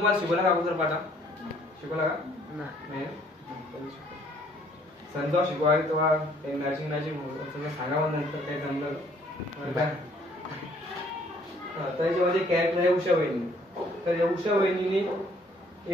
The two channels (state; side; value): normal; both; correlation 0.62